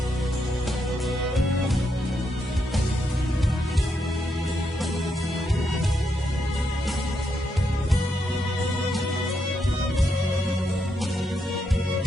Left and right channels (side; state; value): both; normal; correlation 0.81